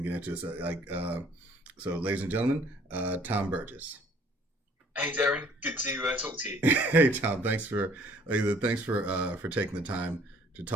get into this. So, ladies and gentlemen, Thom Burgess. Hey Darren, good to talk to you. Hey Tom, thanks for taking the time to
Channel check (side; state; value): both; normal; correlation 0.57